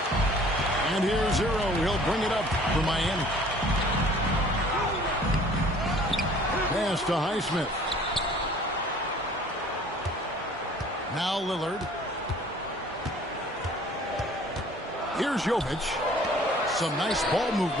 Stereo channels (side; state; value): both; normal; correlation 0.52